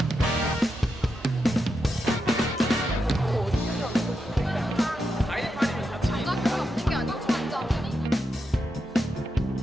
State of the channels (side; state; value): both; normal; correlation 0.86